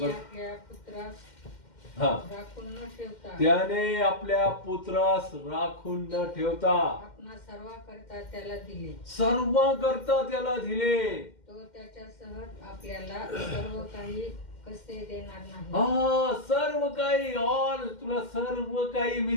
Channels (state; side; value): late; right; 2.1 ms